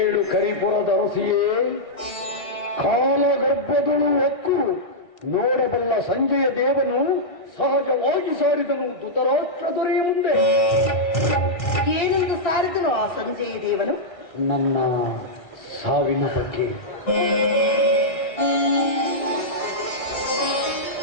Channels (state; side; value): late; right; 1.6 ms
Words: ಕರಿಪುರದ ಅರಸಿಯೇ, ಕಾಲಗರ್ಭದಳು ಹೊಕ್ಕು ನೋಡಬಲ್ಲ ಸಂಜೆಯ ದೇವನು ಸಹಜವಾಗಿ ಸಾರಿದನು ಧೃತರಾಷ್ಟ್ರ ದೊರೆಯ ಮುಂದೆ. ಏನೆಂದು ಸಾರಿದನು ಆ ಸಂಜೆಯ ದೇವನು? ನನ್ನ ಸಾವಿನ ಬಗ್ಗೆ.